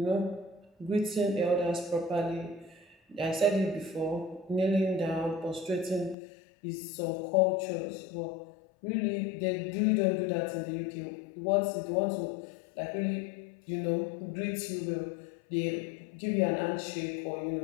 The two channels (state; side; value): drops out; right; at 6.2 s